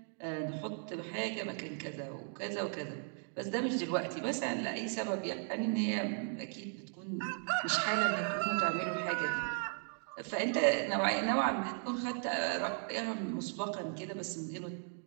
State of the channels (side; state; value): left; silent; 53 dB below the other